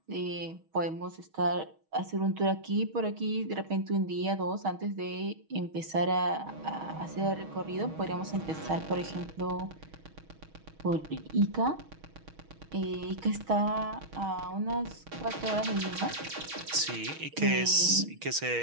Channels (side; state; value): left; late; 6.3 ms